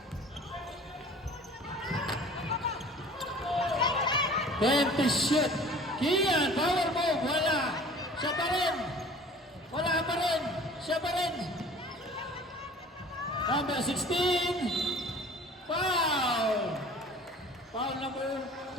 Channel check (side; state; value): both; normal; correlation 0.46